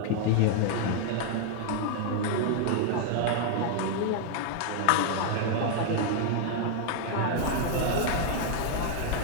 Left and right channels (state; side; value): different; both; correlation 0.00